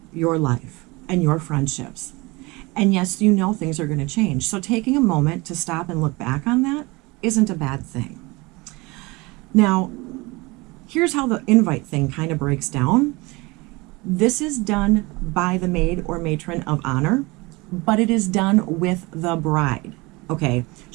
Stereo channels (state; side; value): quieter; left; 24.3 dB